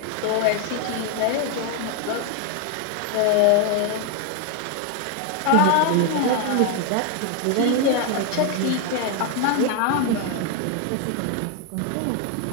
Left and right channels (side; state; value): both; different; correlation 0.01